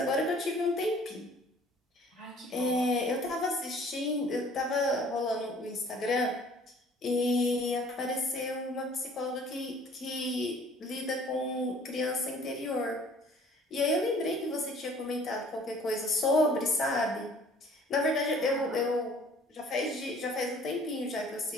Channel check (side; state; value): both; normal; correlation 0.53